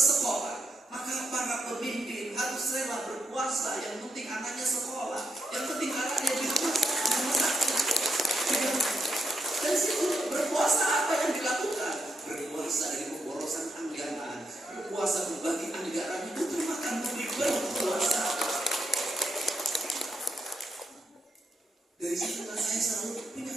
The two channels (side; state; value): both; normal; correlation 0.82